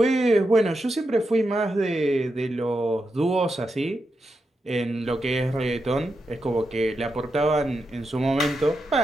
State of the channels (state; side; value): normal; both; correlation 0.87